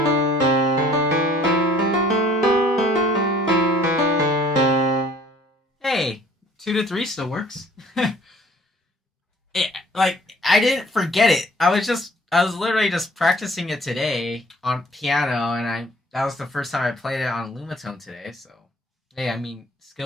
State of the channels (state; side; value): normal; both; correlation 0.55